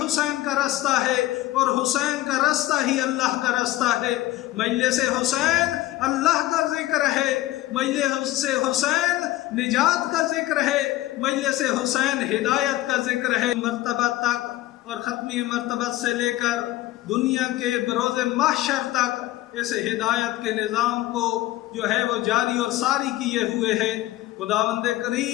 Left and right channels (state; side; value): quieter; right; 16.3 dB